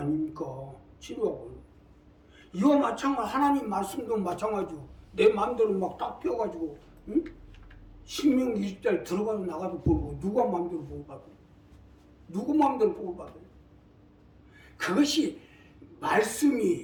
치료약을. 이와 마찬가지 하나님 말씀도 마찬가지고 내 마음대로 막 딱 펴가지고 응? 신명 20달 들어가도 나가도 보고 누가 마음대로 보고 받아요? 누구 마음대로 보고 받아요? 그것이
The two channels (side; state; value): both; identical; correlation 1.00